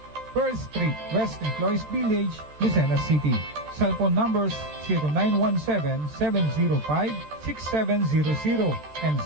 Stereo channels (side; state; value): left; late; 13 ms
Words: Pearl Street, West Employees Village, Lucena City. Cellphone numbers 0917-705-6700 and